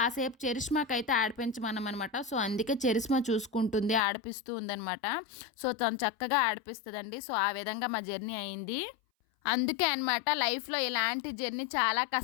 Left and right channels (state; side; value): drops out; right; at 4.0 s